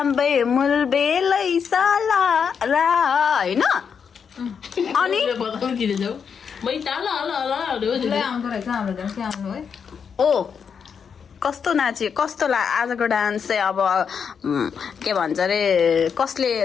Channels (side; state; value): right; quieter; 6.7 dB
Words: मुलबेलै साला रा होइन अनि आउँदो रहेछ हाम्रो झन् के आउनु है ओ कस्तो नाच्यो कस्तो आजको डान्स चाहिँ अब के भन्छ अरे कसले